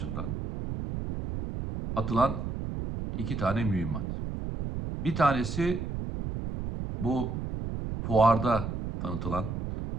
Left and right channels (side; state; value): right; noise; rumble, 5 dB below the sound